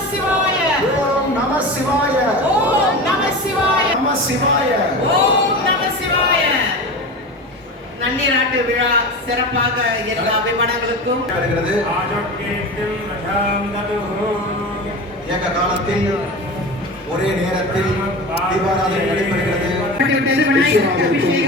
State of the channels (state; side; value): normal; both; correlation 0.29